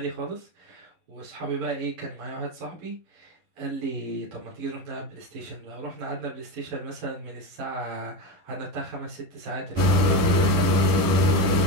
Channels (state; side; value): late; left; 11 ms